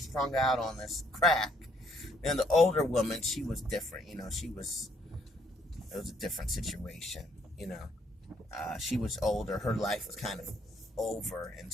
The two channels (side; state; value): both; normal; correlation 0.68